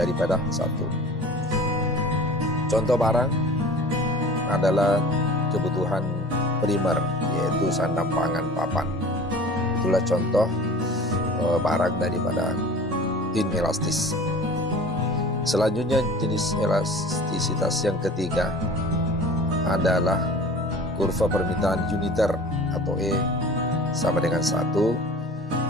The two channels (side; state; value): both; normal; correlation 0.42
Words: 1. Contoh barang adalah kebutuhan primer, yaitu sandang, pangan, papan. Itulah contoh barang daripada inelastis. Selanjutnya jenis elastisitas yang ketiga adalah kurva permintaan uniter atau E sama dengan 1.